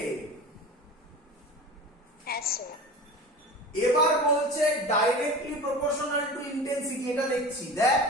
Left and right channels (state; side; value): normal; both; correlation 0.34